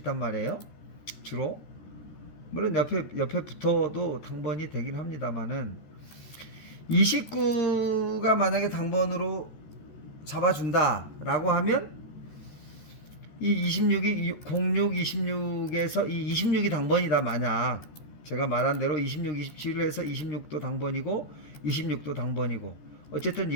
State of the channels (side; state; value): right; late; 13 ms